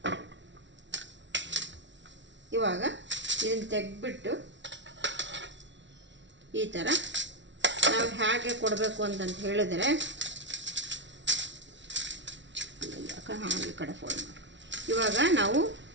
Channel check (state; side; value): late; left; 0.54 ms